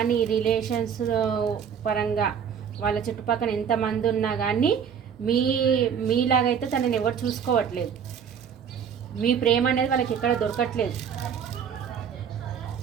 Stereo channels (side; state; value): left; quieter; 7.6 dB